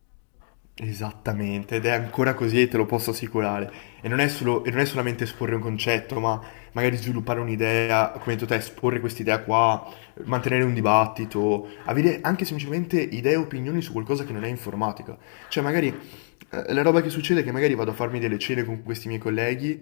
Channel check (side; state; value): right; silent; digital silence